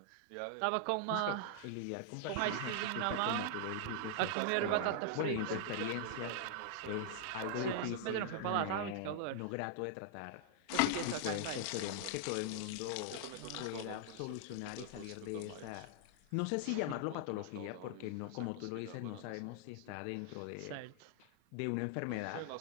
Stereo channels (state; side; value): different; both; correlation -0.01